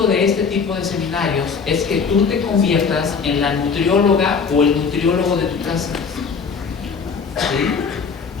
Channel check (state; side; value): quieter; right; 5.6 dB